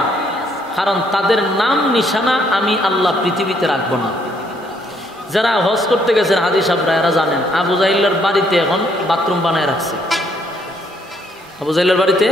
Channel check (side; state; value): both; normal; correlation 0.69